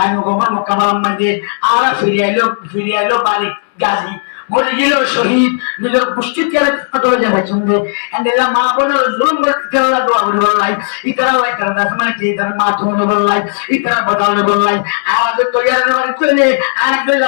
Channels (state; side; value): silent; right; digital silence